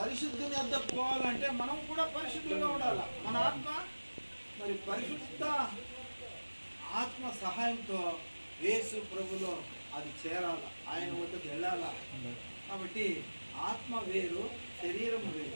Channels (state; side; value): inverted; both; correlation -1.00